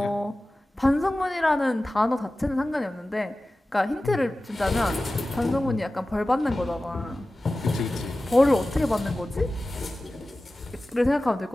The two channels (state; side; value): normal; both; correlation 0.96